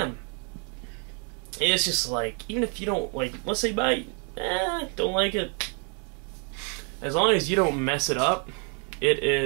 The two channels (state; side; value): quieter; left; 38.6 dB